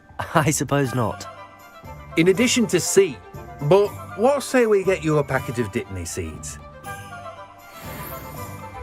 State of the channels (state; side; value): identical; both; correlation 1.00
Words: I suppose not. In addition to seed, but what say we get you a packet of dittany seeds?